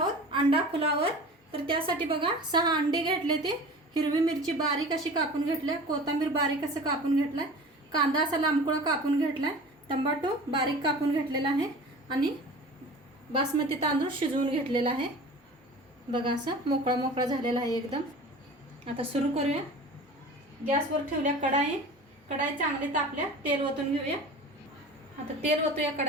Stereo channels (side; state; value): both; normal; correlation 0.38